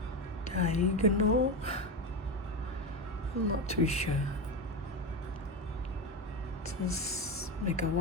diagonal, I'm not too sure. Just make a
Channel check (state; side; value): normal; both; correlation 0.16